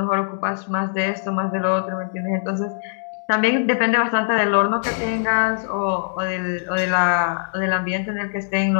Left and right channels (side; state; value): right; silent; digital silence